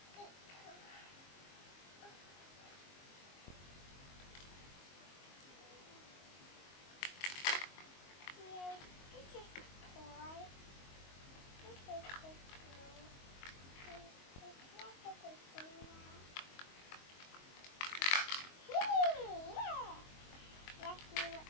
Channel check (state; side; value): late; right; 22 ms